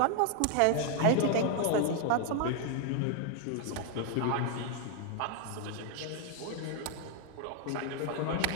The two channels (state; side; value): different; both; correlation 0.01